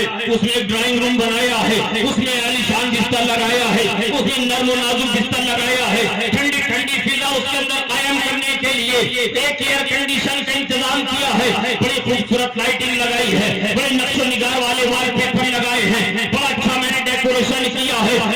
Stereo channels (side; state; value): both; identical; correlation 1.00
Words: اس میں ایک ڈرائنگ روم بنایا ہے، اس میں عالیشان بستر لگایا ہے، اس میں نرم و نازک بستر لگایا ہے، ٹھنڈی ٹھنڈی فضا اس کے اندر قائم کرنے کے لیے ایک ایئر کنڈیشن کا انتظام کیا ہے، بڑی خوبصورت لائٹنگ لگائی ہے، بڑے نقش و نگار والے وال پیپر لگائے ہیں، بڑا اچھا میں نے ڈیکوریشن کیا